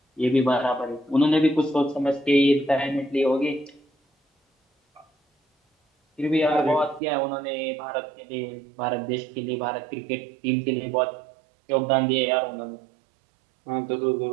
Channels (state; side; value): drops out; left; at 7.0 s